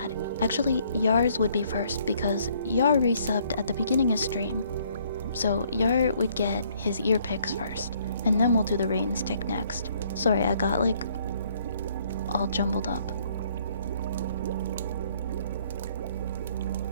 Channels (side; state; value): both; inverted; correlation -0.64